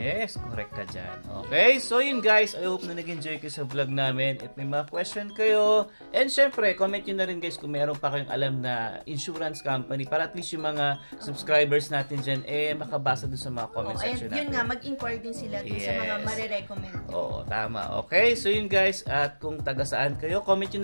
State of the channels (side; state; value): both; inverted; correlation -1.00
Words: correct ka dyan. Okay, so yun guys, I hope na nag-enjoy kayo sa vlog namin. If may mga question kayo, and syempre, comment nyo na rin guys kung meron pa kayong alam na insurance company para at least yung mga subscribers natin dyan, makabasa dun sa mga comment section natin. Yun nga, mag-inquire din sila dun sa mga marirecommend. Oo, tama. Okay, so yun guys, at kung taga saan kayo, comment nyo